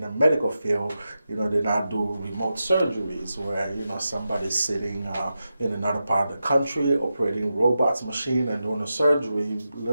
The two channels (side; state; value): both; inverted; correlation -0.90